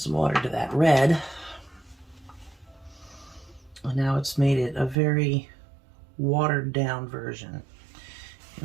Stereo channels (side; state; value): left; drops out; at 5.0 s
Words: water to that red. And now it's made it a very watered down version.